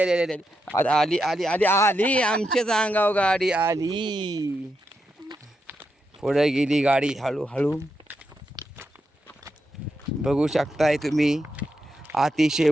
आली आली आली आली आली आमच्याच अंगावर गाडी आली. पुढे गेली गाडी हळूहळू. बघू शकताय तुम्ही अतिशय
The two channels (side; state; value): both; normal; correlation 0.85